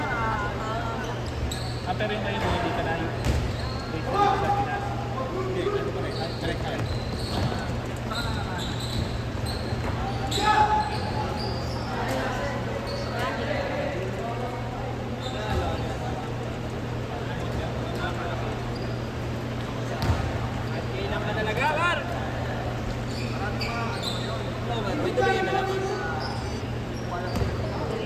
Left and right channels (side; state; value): both; identical; correlation 1.00